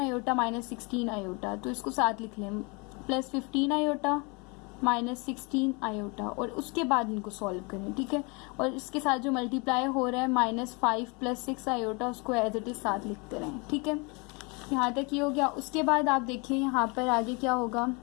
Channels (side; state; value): right; quieter; 30.2 dB